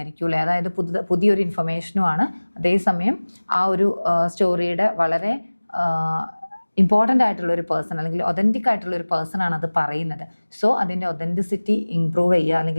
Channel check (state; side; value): inverted; both; correlation -1.00